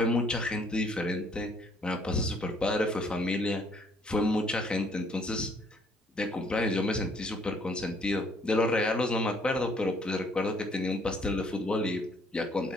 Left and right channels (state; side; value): normal; both; correlation 0.64